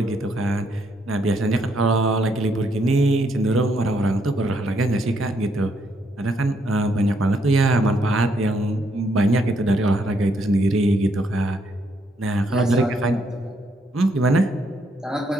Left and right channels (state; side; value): normal; both; correlation 0.73